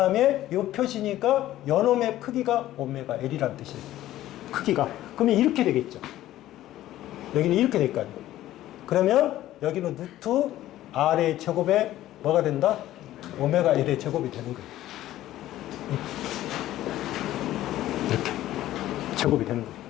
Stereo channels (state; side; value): quieter; right; 14.2 dB